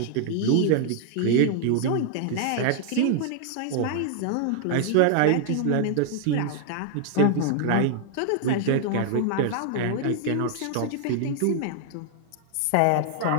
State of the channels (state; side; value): different; both; correlation 0.00